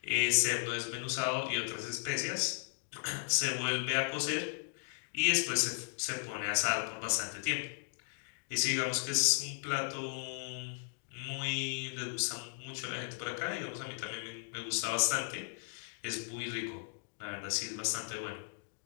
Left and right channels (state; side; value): silent; right; digital silence